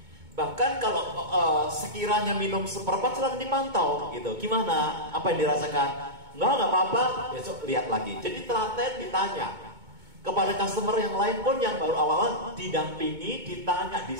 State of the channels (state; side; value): late; left; 2.2 ms